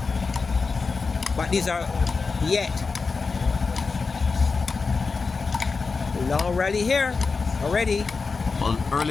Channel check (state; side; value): quieter; right; 4.5 dB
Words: But these are yet. Long rally here already. Well,